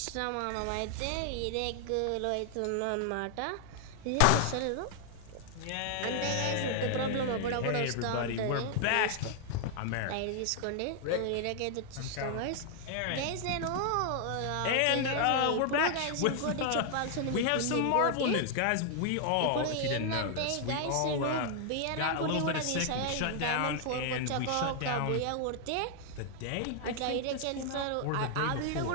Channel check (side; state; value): both; different; correlation 0.00